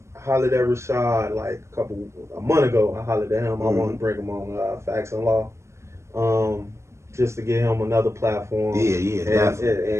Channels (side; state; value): left; late; 0.13 ms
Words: I hollered at Rashad like a month ago. I hollered at him. I want to bring him on Facts and Law, just to get him another platform. Yeah, definitely.